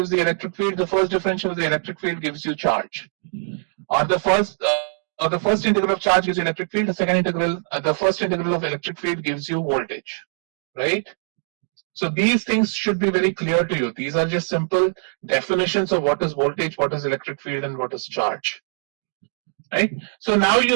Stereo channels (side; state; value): left; silent; digital silence